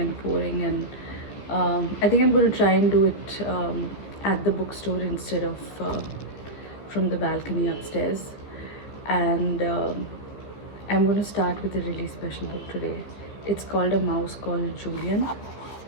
pouring, and I think I'm going to try and do it at the bookstore instead of from the balcony upstairs. And I'm going to start with a really special book today. It's called A Mouse Called Julian.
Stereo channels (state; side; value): late; right; 14 ms